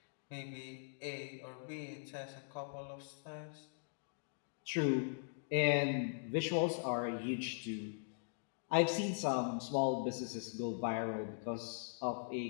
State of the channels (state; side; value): silent; right; digital silence